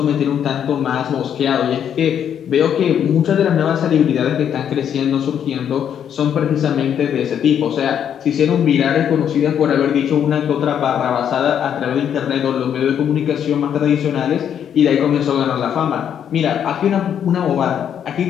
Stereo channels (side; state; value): right; quieter; 8.9 dB